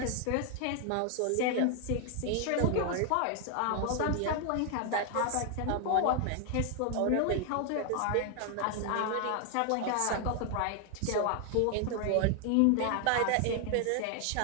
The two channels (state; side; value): different; both; correlation 0.00